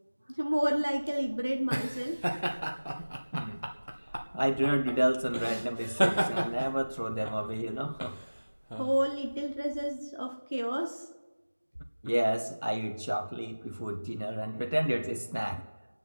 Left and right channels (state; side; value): inverted; both; correlation -1.00